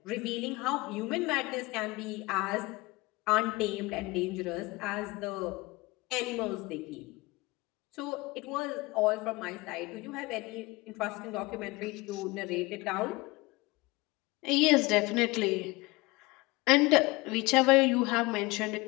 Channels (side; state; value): right; quieter; 23.0 dB